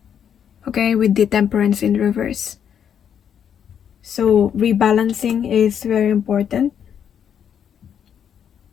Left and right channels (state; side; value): quieter; right; 8.5 dB